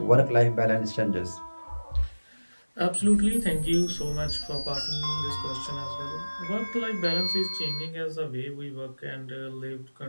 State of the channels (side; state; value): both; inverted; correlation -1.00